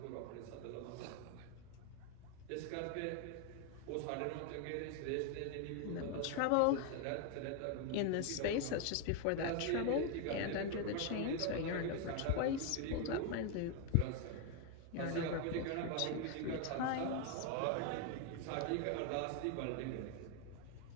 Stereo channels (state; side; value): different; both; correlation 0.01